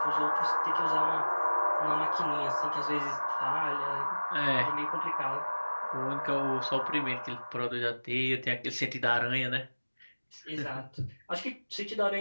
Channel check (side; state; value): both; inverted; correlation -1.00